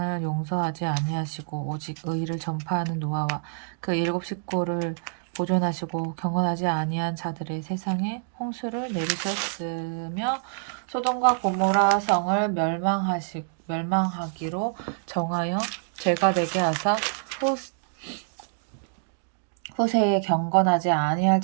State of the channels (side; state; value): left; silent; digital silence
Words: 용서하지 아니하시고 오직 의를 전파하는 노아와 그 일곱 식구를 보존하시고 경건하지 아니한 자들의 세상에 홍수를 내리셨으며 소돔과 고모라 성을 멸망하기로 정하여 죄가 되게 하사 후세에 경건하지 아니할